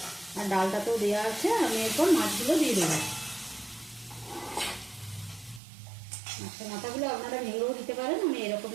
আর ডালটাতেও দেওয়া আছে। আমি এরপর মাছগুলো দিয়ে দেবো, মাছের মাথাগুলো আপনারা ভেঙেও দিতে পারেন, আমি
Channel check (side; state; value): left; drops out; at 5.6 s